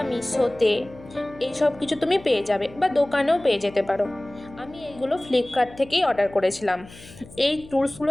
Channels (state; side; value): noise; left; hum, 20 dB below the sound